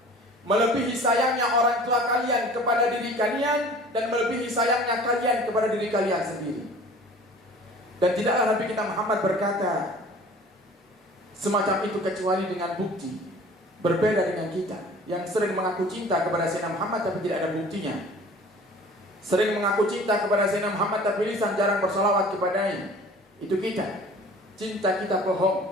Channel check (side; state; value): both; normal; correlation 0.46